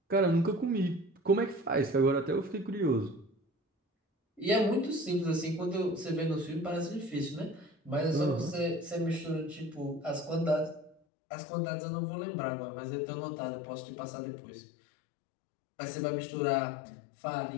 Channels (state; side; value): drops out; right; at 11.0 s